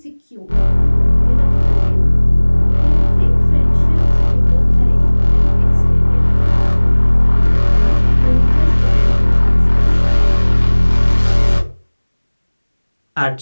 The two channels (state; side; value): inverted; both; correlation -1.00